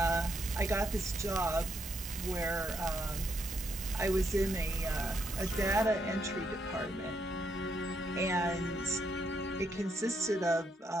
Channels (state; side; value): normal; both; correlation 0.77